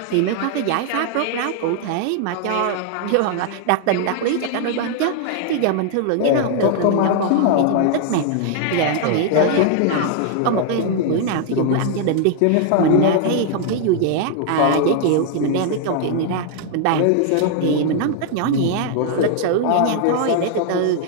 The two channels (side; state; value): both; different; correlation 0.00